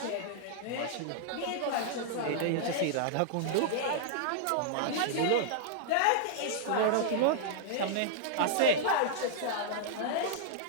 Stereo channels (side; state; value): both; different; correlation -0.01